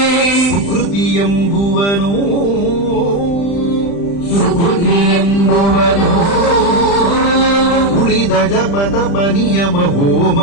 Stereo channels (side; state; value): right; late; 35 ms